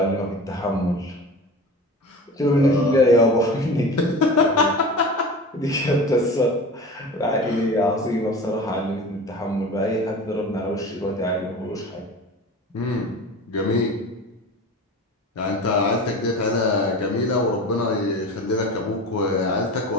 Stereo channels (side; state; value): both; normal; correlation 0.34